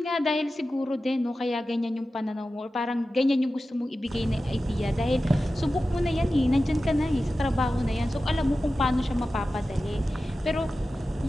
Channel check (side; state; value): both; normal; correlation 0.94